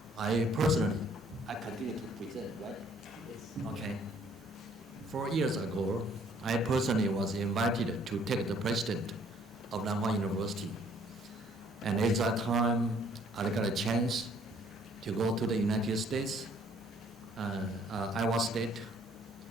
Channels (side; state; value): both; normal; correlation 0.61